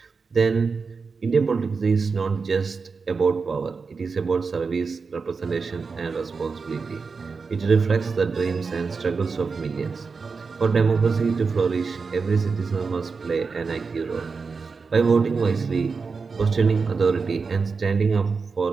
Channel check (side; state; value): left; quieter; 4.8 dB